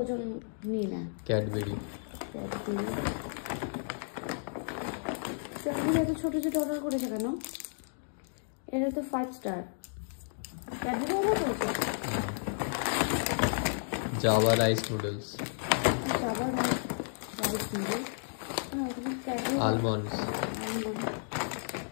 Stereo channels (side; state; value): right; silent; digital silence